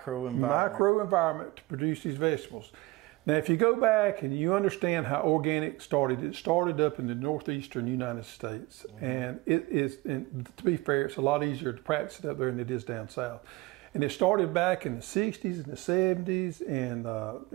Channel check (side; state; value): left; quieter; 20.8 dB